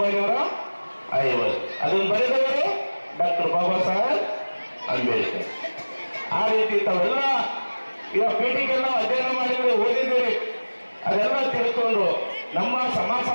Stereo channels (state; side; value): inverted; both; correlation -1.00